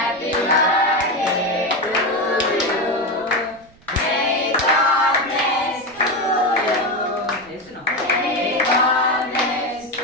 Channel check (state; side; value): noise; right; rumble, 27 dB below the sound